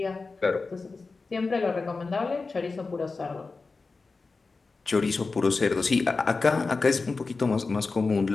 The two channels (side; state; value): right; quieter; 4.0 dB